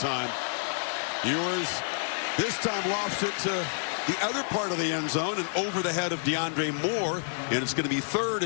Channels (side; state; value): right; silent; digital silence